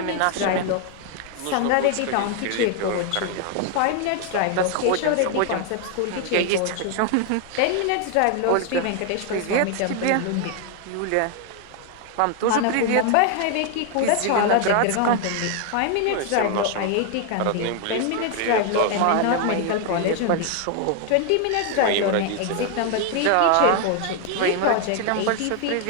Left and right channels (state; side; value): different; both; correlation 0.00